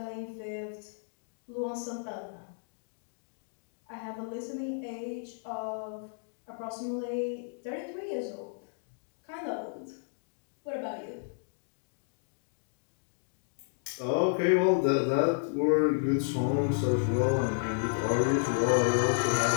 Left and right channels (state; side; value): silent; right; digital silence